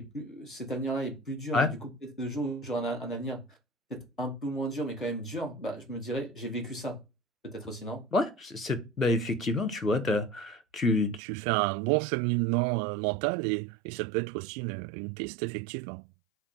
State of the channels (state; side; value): drops out; left; at 11.2 s